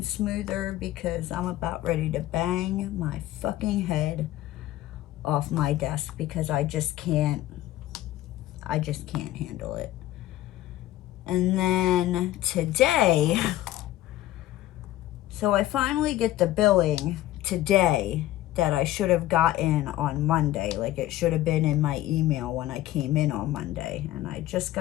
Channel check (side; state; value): right; quieter; 14.6 dB